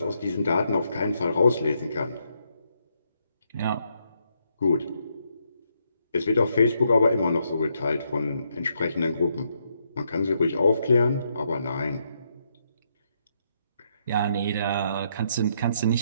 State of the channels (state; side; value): inverted; both; correlation -0.77